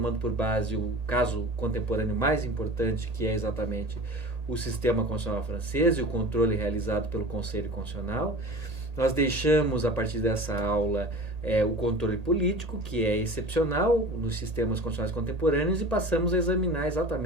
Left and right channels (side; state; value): left; late; 1.8 ms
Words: por base o caso contemporâneo mais importante, que é exatamente o sistema constitucional francês e o controle realizado pelo Conselho Constitucional. Nós deixamos, a partir dessa aula, o controle político, que é excepcional nos sistemas constitucionais contemporâneos, e passamos a examinar